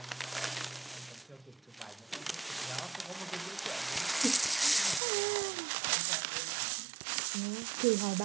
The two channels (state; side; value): drops out; left; at 5.0 s